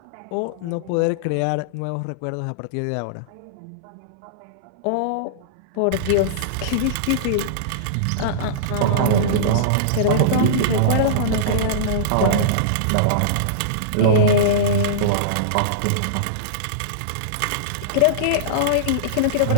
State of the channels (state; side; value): different; both; correlation -0.03